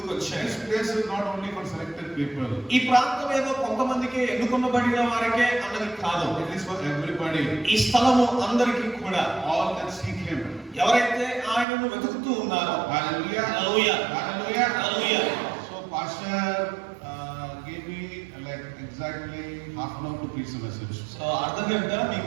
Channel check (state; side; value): drops out; left; at 11.7 s